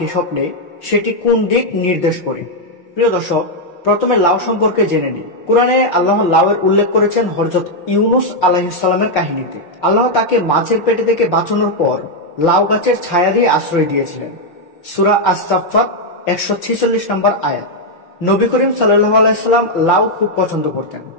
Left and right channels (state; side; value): late; right; 5.8 ms